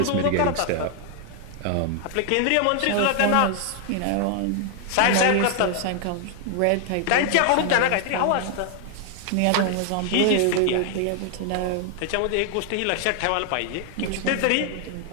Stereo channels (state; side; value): different; both; correlation 0.00